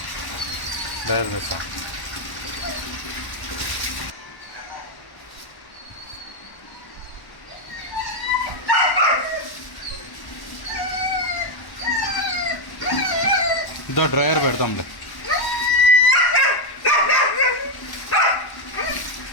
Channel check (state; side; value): late; right; 1.1 ms